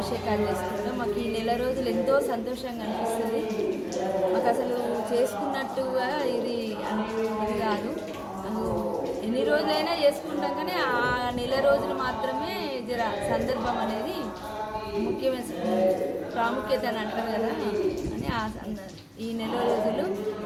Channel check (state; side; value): identical; both; correlation 1.00